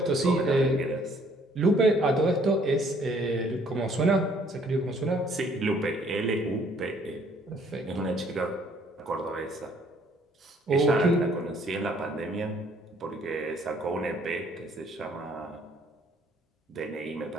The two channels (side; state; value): both; normal; correlation 0.62